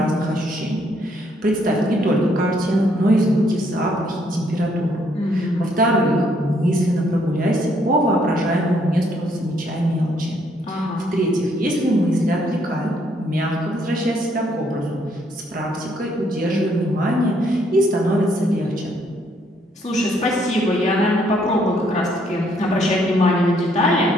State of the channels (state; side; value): normal; both; correlation 0.69